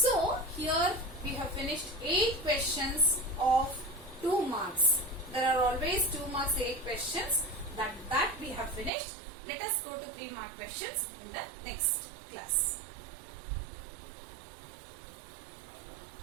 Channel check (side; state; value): left; drops out; at 8.9 s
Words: here we have finished 8 questions of 2 marks. There are always 2 marks 8 questions. That we have finished. Let us go to 3 mark questions in the next class.